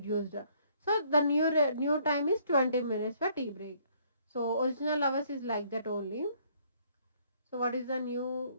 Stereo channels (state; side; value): inverted; both; correlation -0.64